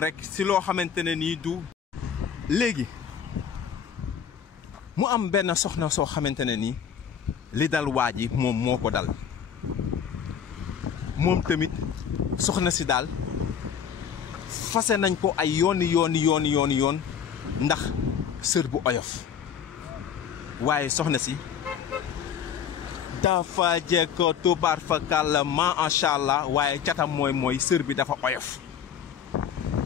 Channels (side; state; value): right; quieter; 8.0 dB